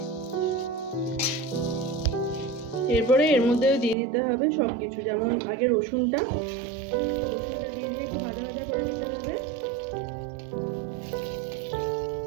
এরপরে এর মধ্যে দিয়ে দিতে হবে সবকিছু, যেমন আগে রসুনটা দিয়ে দিয়ে একটু ভাজা ভাজা করে নিতে হবে।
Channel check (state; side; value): drops out; left; at 4.0 s